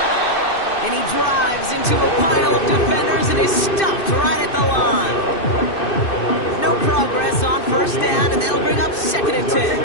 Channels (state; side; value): late; right; 2.6 ms